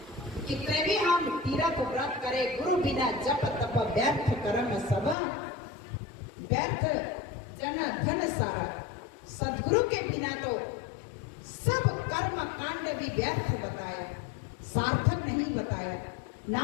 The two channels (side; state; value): right; drops out; at 5.2 s